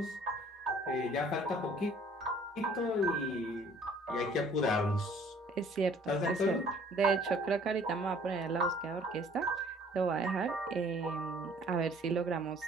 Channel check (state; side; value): normal; both; correlation 0.55